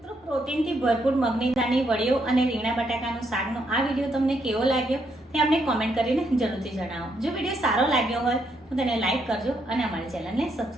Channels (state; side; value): normal; both; correlation 0.76